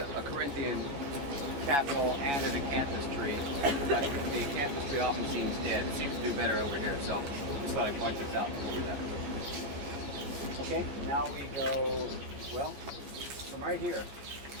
Corinthian capital and an acanthus tree, but the acanthus tree often seems dead. It seems to do better over here, so just thought I'd point this out before we left. Okay, now we go, well, from right here,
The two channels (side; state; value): left; late; 14 ms